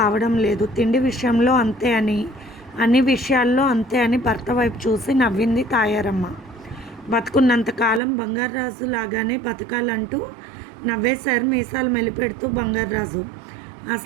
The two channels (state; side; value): drops out; left; at 8.0 s